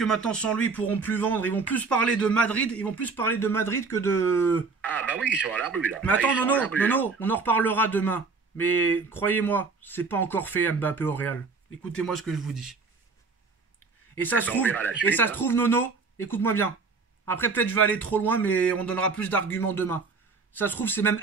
maintenant, sans lui, ils pourront plus vendre. Ils vont plus parler de Madrid. Ils vont plus parler de Madrid que de... Ah bah oui, ils sont à la rue, là. Mais attends, Nono, on en reparlera demain. Mais croyez-moi, c'est pas encore fait, Mbappé au Real. Écoutez-moi ce que je vous dis. Et ça se trouve, Nono, écoute-moi bien. Après, peut-être je vais aller trop loin, mais on donnera plus d'arguments demain. Ça se trouve, c'est même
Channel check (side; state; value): left; quieter; 4.5 dB